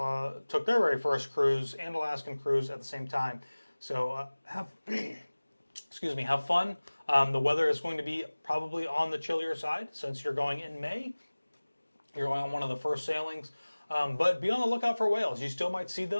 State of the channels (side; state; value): both; inverted; correlation -1.00